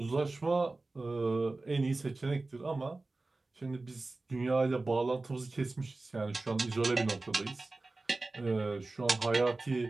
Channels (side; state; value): left; quieter; 3.3 dB